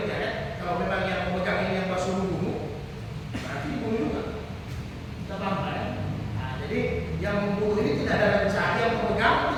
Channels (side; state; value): both; identical; correlation 1.00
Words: ya. Kalau memang yang memegang ini yang masuk bunuh, nanti bunuh juga. Kita paham kan? Nah, jadi yang membunuh ini tidak ada rencana, yang memegang